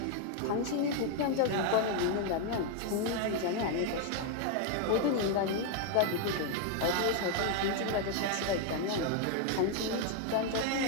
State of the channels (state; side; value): different; both; correlation 0.01